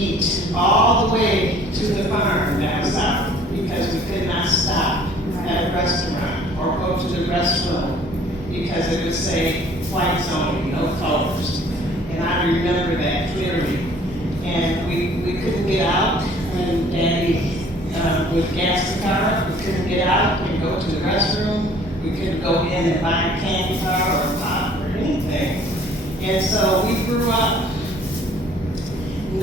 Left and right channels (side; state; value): both; normal; correlation 0.54